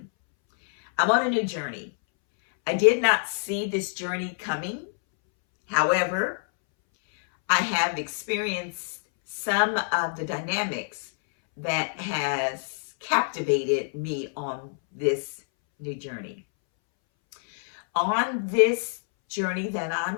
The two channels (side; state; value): right; silent; 61 dB below the other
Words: I'm on a new journey. I did not see this journey coming. However, I have experienced some of the dynamics that has captivated me on this new journey. On this journey that